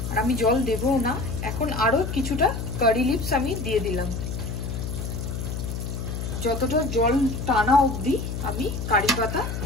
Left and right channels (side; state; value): left; noise; hum, 4 dB below the sound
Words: আর আমি জল দেবও না। এখন আরো কিছুটা কারি লিভস আমি দিয়ে দিলাম। যতটা জল টানা অবধি আমি কারি পাতা